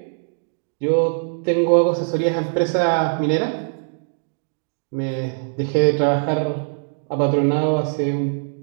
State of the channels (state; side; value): silent; left; digital silence